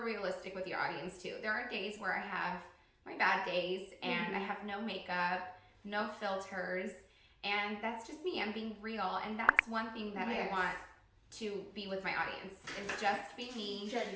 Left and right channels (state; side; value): identical; both; correlation 1.00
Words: realistic with your audience too. There are days where I have my bad days, and I have no makeup, no filters, and that's just me. I'm being real, and that's one thing that I want to be with my audience, is just be me,